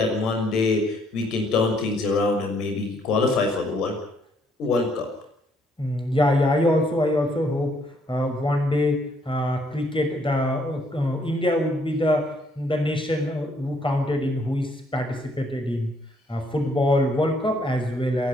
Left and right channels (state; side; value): normal; both; correlation 0.69